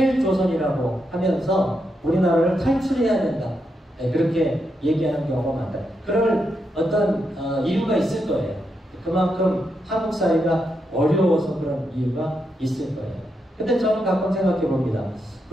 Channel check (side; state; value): both; normal; correlation 0.83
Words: 하면서 우리나라를 탈출해야 된다. 네, 그렇게 얘기하는 경우가 많다. 그럴 어떤 이유가 있을 거예요. 그만큼 한국 사회가 어려워서 그런 이유가 있을 거예요. 근데 저는 가끔 생각해 봅니다.